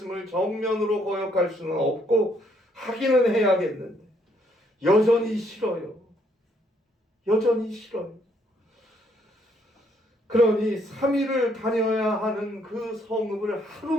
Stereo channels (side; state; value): both; normal; correlation 0.69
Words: 정면으로 거역할 수는 없고 하기는 해야겠는데 여전히 싫어요. 여전히 싫어요. 그러니 3일을 다녀야 하는 그 성읍을